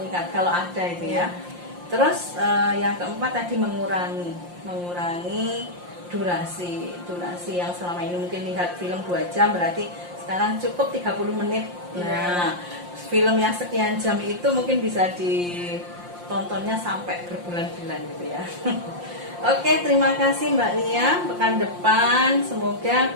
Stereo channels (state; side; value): late; left; 5.7 ms